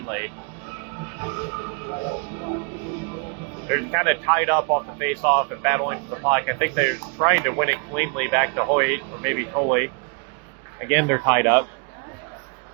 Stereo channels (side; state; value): left; quieter; 36.2 dB